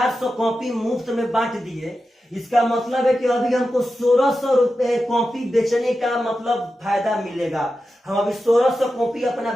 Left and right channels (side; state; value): both; normal; correlation 0.91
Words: कॉपी मुफ्त में बांट दिए, इसका मतलब है कि अभी हमको 1600 रुपए कॉपी बेचने का मतलब फायदा मिलेगा। हम अभी 1600 कॉपी अपना